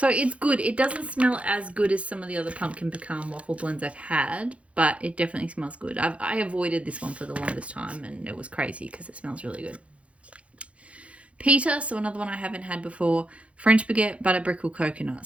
it's good. It doesn't smell as good as some of the other pumpkin pecan waffle blends I've had, but it definitely smells good. I avoided this one for the longest time, and it was crazy because it smells really good. Peter, so another one I haven't had before, French baguette, butter brickle, coconut.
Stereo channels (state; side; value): late; left; 0.062 ms